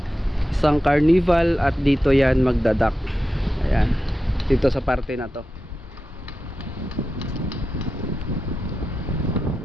isang carnival, at dito yan magdadak. Ayan, dito sa parte na to.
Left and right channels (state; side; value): normal; both; correlation 0.91